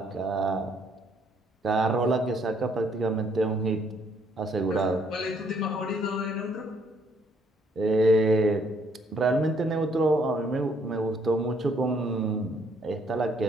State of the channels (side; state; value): both; normal; correlation 0.67